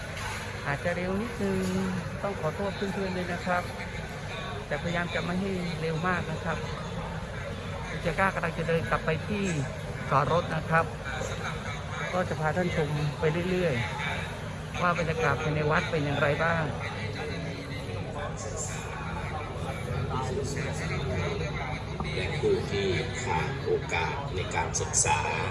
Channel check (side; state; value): both; identical; correlation 1.00